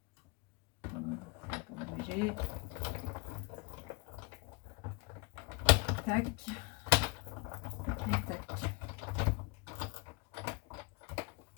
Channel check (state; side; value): quieter; right; 27.9 dB